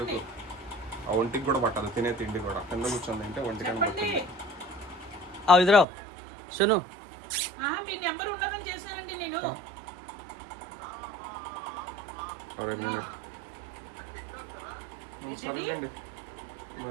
ఆ ఒంటికి కూడా పట్టదు తినే తిండి కూడా. కింద కూర్చొని తింటే ఒంటికని పట్టింది. ఇద్దరు సును ఒక మినిట్ సరేండి.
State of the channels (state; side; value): drops out; left; at 5.9 s